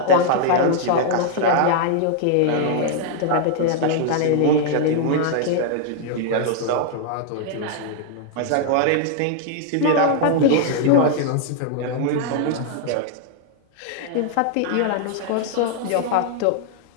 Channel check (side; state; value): both; different; correlation 0.00